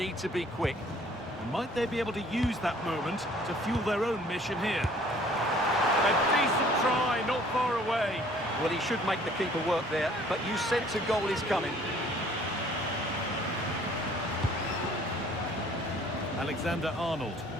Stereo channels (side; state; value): both; normal; correlation 0.56